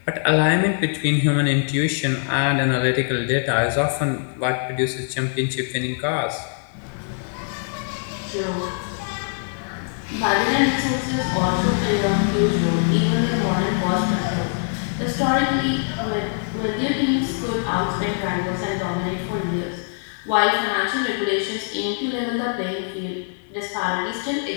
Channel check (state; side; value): silent; right; digital silence